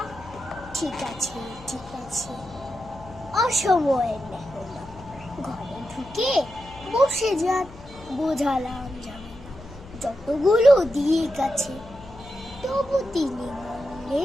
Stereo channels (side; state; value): left; noise; hum, 19 dB below the sound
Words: ঠিক আছে ঠিক আছে অসময়ের লেখা। ঘরে ঢুকে বসে যান, বোঝালাম যাবে না যতগুলো দিক আছে, তবু তিনি